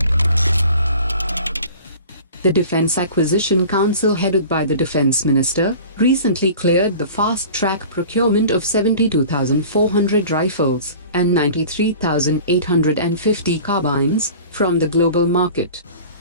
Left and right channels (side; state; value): both; inverted; correlation -0.42